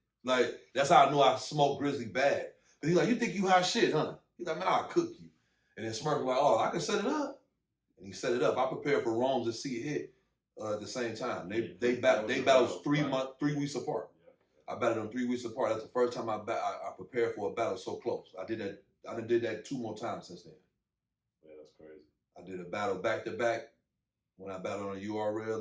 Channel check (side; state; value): both; identical; correlation 1.00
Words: Like, that's how I knew I smoked Grizzly bad. Because he's like, you think you hot shit, huh? He's like, man, I'll cook you. And then Smirk was like, oh, I can set it up. And he set it up. I prepared for Rome's to see it hit at the same time. They battled 3 weeks apart. I battled them 3 weeks apart. That's the first time I prepared for a battle so close. I did that 2 more times since then. Yeah, that's crazy. I did a battle back to back when I battled on